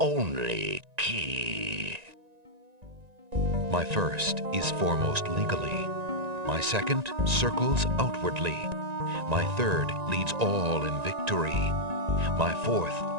key. My first is foremost legally. My second circles outwardly. My third leads all in victory. My fourth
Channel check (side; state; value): left; late; 1.9 ms